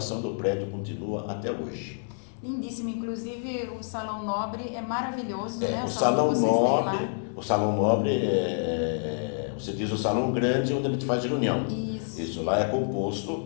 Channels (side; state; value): right; silent; 59 dB below the other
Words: do prédio continua até hoje. Lindíssimo, inclusive o Salão Nobre é maravilhoso, né? O Salão Nobre você diz o salão grande onde a gente faz reunião. Isso lá é